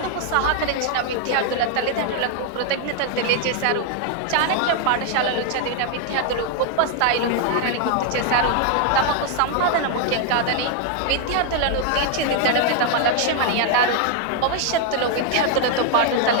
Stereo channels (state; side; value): different; both; correlation 0.00